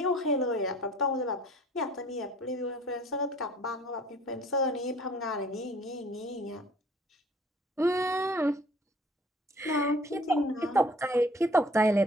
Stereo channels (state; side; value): normal; both; correlation 0.54